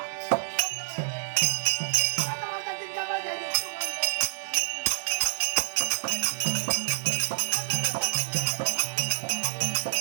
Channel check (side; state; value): left; silent; 59 dB below the other